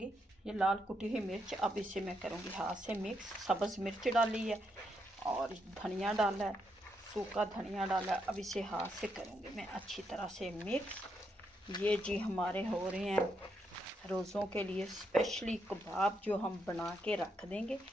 ये लाल कुटी हुई मिर्च। अब इसे मैं करूंगी हाथ से मिक्स। सब्ज़ मिर्च डाली है और धनिया डाला है, सूखा धनिया डाला है। अब इसे हाथ से करूंगी मैं अच्छी तरह से मिक्स। ये जी हमारे हो रहे हैं रोज़ों के लिए स्पेशली कबाब जो हम बना के रख देंगे।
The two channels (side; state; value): both; normal; correlation 0.79